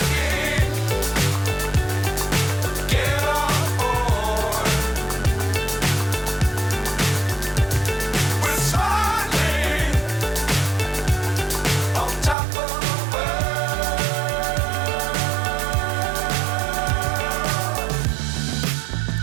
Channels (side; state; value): left; drops out; at 12.4 s